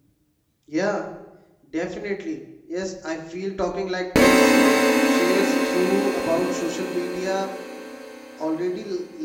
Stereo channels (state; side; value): identical; both; correlation 1.00